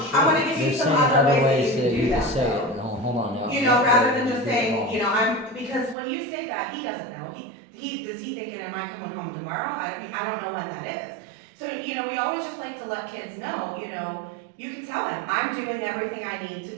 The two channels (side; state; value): left; drops out; at 6.0 s